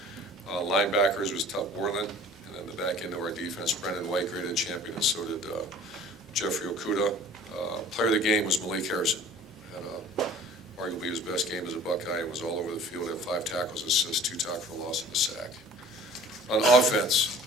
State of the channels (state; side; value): normal; both; correlation 0.48